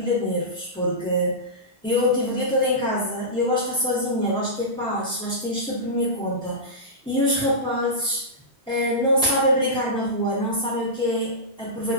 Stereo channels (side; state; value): both; normal; correlation -0.16